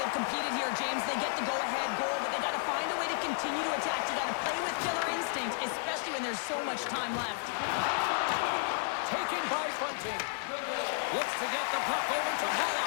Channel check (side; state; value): right; silent; 56 dB below the other